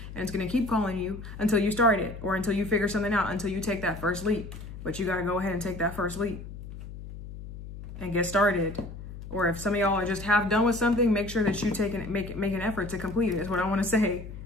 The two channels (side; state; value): left; noise; hum, 12 dB below the sound